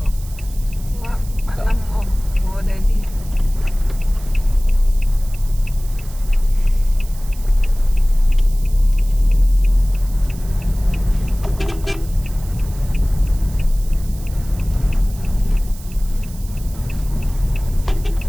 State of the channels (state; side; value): noise; right; hiss, 20 dB below the sound